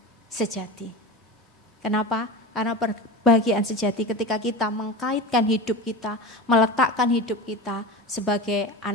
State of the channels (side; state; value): both; normal; correlation 0.28